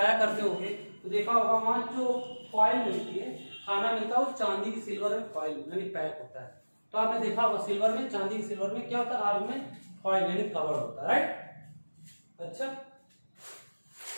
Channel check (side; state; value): both; inverted; correlation -1.00